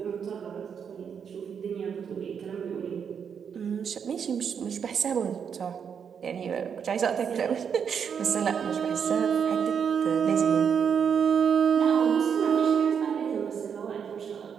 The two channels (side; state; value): left; quieter; 7.2 dB